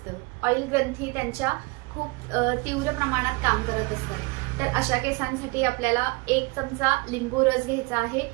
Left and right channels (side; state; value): left; quieter; 27.4 dB